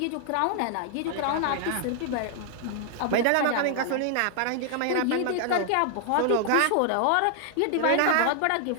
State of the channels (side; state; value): both; different; correlation -0.01